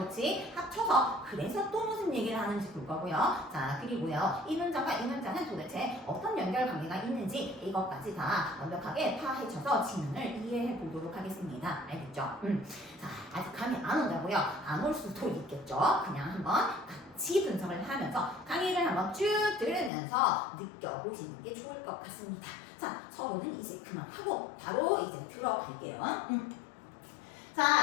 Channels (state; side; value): drops out; right; at 19.9 s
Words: 그치? 합쳐서 그래서 또 무슨 얘기를 하는지 볼 거고요. 자, 그리고요. 이 문장과 이 문장은 도대체 어떤 연결 관계가 있는지 이것까지 다 완벽하게 파헤쳐서 지문을 이해해 보도록 하겠습니다. 알겠죠? 자, 아직 감이 안 온다고요? 안 올 수도 있겠죠? 그냥 한번 같이 분석을 하면서 강의를 한번 쭉 들으면서 느껴보시는 게 좋을 것 같습니다. 자, 서로는 이제 그만하고 바로 이제 들어갈게요.